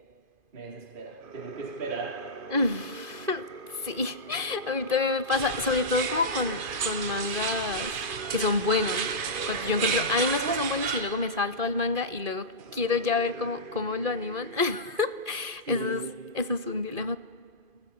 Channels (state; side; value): late; left; 2.5 ms